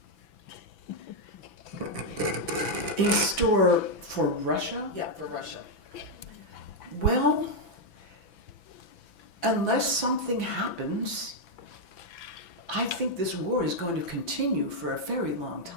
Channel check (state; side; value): late; right; 6.0 ms